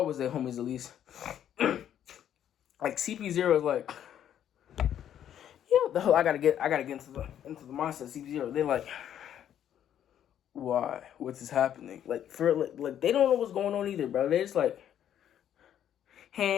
was their homies at least. CP0 is yeah, I gotta get into the mindset of CP0. They're why? What's is happening? They don't know what's going on either, bro. They just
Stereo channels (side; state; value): right; quieter; 10.2 dB